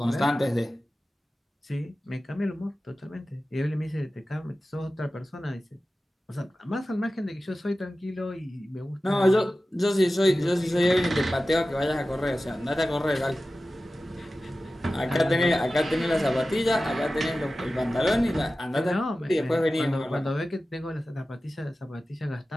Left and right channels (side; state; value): both; normal; correlation 0.95